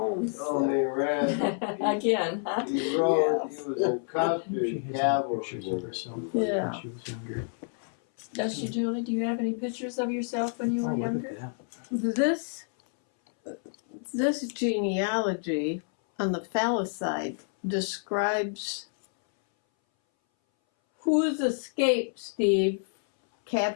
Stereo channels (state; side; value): silent; right; 59 dB below the other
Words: Oh, me ran. Again, huh? He rode, Yes. he was in She custard has some cavalry. pictures of herself Yeah. when she was younger. Does she, Julie? Do you have any pictures of yourself when you Oh, were look younger? at that. This genealogy on the phallus side describes whose escape Steve